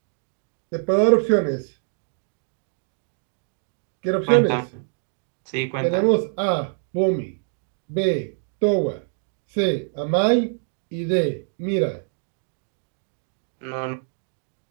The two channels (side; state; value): left; silent; digital silence